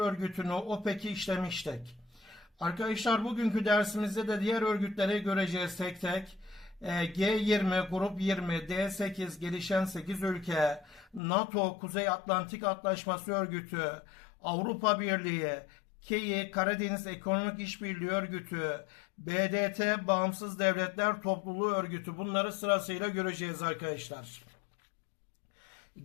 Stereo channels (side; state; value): right; drops out; at 11.2 s